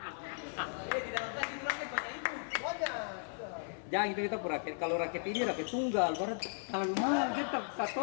Jangan gitu kita raket. Kalau raket ini raket tunggal, baru terlalu mahal kita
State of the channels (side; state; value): right; silent; digital silence